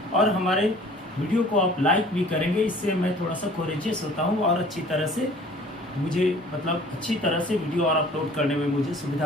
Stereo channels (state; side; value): normal; both; correlation 0.50